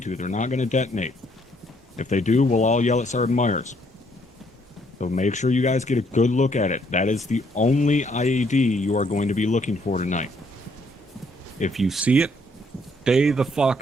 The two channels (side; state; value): both; normal; correlation 0.68